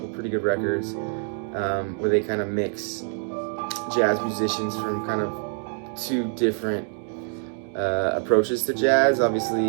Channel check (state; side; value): silent; left; 56 dB below the other